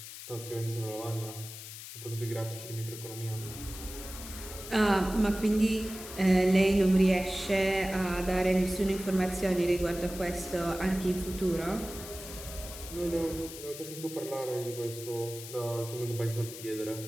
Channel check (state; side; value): noise; left; hiss, 12 dB below the sound